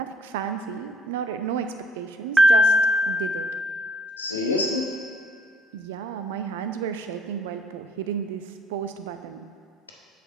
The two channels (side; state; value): both; normal; correlation 0.62